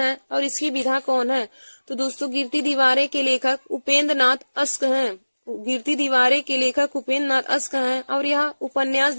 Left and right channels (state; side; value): inverted; both; correlation -1.00